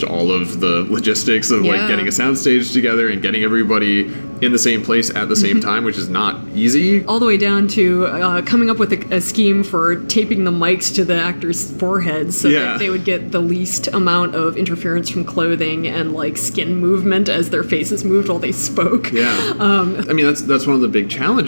all of the logistics of like getting a soundstage together and getting everybody in the same place at the same time, which is not easy. All the way down to coming up with a scheme for taping the mics to the actors' foreheads so that they would get the least amount of interference from clothing and like skin movement as their faces moved while they spoke. I mean, that's one of the big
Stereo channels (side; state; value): both; inverted; correlation -1.00